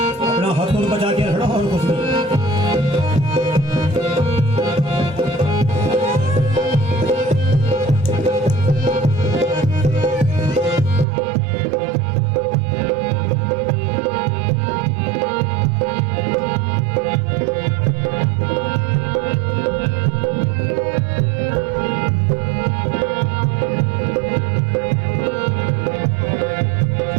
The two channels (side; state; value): left; drops out; at 11.1 s